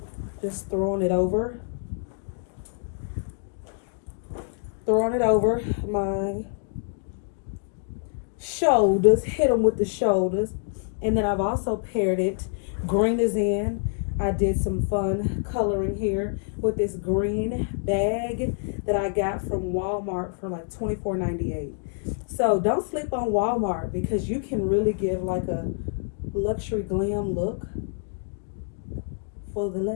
Just throwing it over my shoulders, hit them with the shoulders. And then I've also paired it, green is in. I did some fun coloring here with this green bag that I got from Walmart for like $24.98. So don't sleep on Walmart, because you can really give like a luxury glam look for the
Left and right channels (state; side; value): silent; right; digital silence